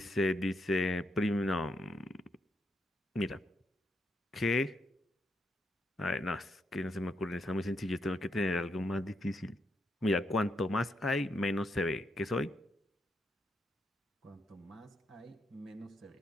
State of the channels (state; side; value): normal; both; correlation 0.79